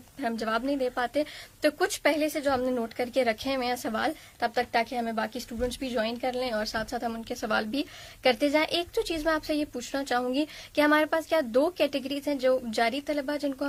پھر ہم جواب نہیں دے پاتے، تو کچھ پہلے سے جو ہم نے نوٹ کر کے رکھے ہوئے ہیں سوال تب تک، تاکہ ہمیں باقی اسٹوڈنٹس بھی جوائن کر لیں اور ساتھ ساتھ ہم ان کے سوال بھی کرتے جائیں. ایک تو چیز میں آپ سے یہ پوچھنا چاہوں گی کہ ہمارے پاس کیا 2 کیٹیگریز ہیں، جو جاری طلبہ جن کو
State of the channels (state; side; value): identical; both; correlation 1.00